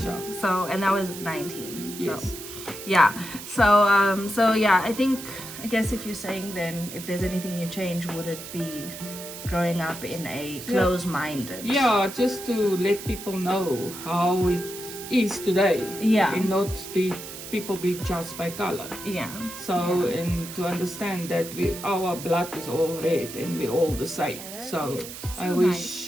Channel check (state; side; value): noise; right; hiss, 11 dB below the sound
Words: So, and that was 19. Yes. So, yeah. So yeah, I guess if you're saying then if there's anything you change, would it be growing up in a closed-minded? Yeah, just to let people know how it is today. Yeah. And not people be judged by color. Yeah. So, and to understand that our blood is all red and we're all the same. So I